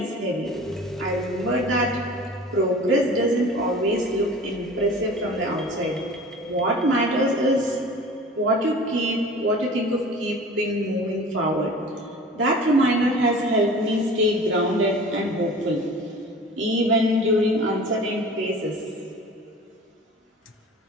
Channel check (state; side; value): normal; both; correlation 0.41